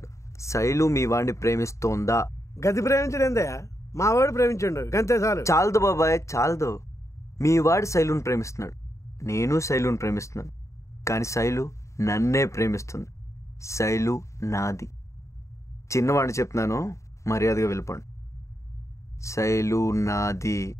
శైలు మీ వాడిని ప్రేమిస్తోందా? గది ప్రేమించడేందయ్యా, మా వాడు ప్రేమించండు గంతే చాలు. చాలదు బాబాయ్, చాలదు. మీ వాడి శైలుని ప్రేమిస్తున్నాడు, నేను శైలుని ప్రేమిస్తున్నాను. కానీ శైలు నన్నే ప్రేమిస్తుంది. శైలు నాది. చిన్నవాడిని చెప్తున్నాను, మర్యాదగా వెళ్ళిపోండి. శైలు నాది.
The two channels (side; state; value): right; late; 0.14 ms